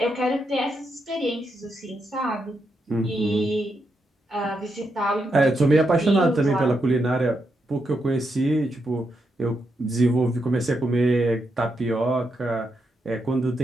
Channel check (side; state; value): both; normal; correlation 0.82